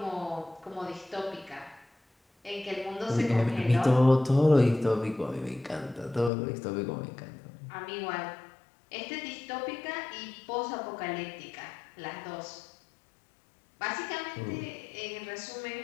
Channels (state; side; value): drops out; right; at 6.3 s